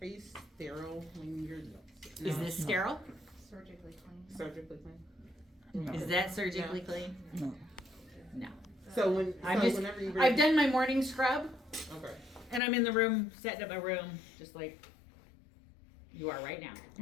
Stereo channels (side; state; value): right; drops out; at 12.6 s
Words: Are you sterile when you're Is this sterile? Surgically clean. surgically clean? Is that surgically clean? No. No. So when I'm so just, whenever you I've done my morning scrub okay. and I'm in the room, setting up my room, just like you are right now.